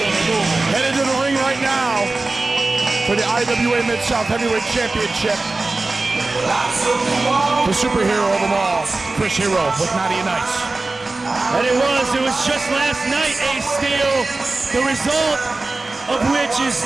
on the move. Headed to the ring right now for the IWA Mid-South Heavyweight Championship. The superhero of them all, Chris Hero with Naughty and Nice. And it was just last night, Ace Steel, the result of which is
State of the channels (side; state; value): left; quieter; 3.3 dB